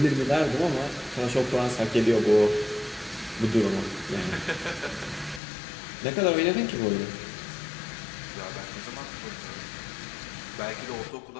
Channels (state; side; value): drops out; right; at 5.4 s